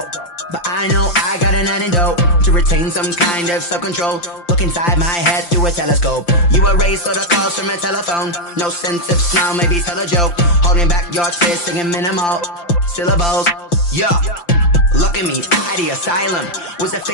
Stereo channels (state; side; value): late; right; 5.8 ms